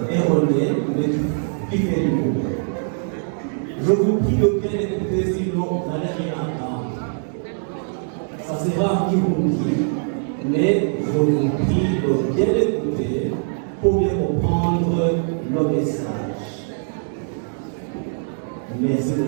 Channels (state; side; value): silent; left; digital silence